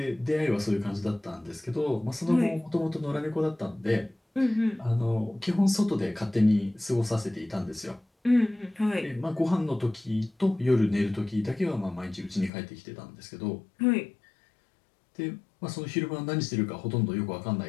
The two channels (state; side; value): drops out; right; at 12.5 s